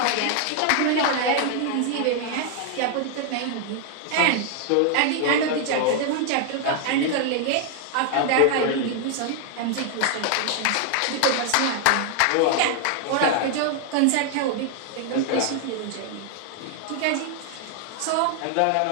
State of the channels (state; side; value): different; both; correlation 0.00